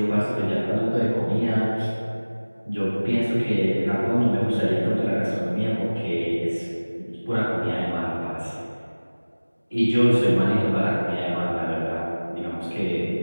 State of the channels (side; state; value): both; inverted; correlation -1.00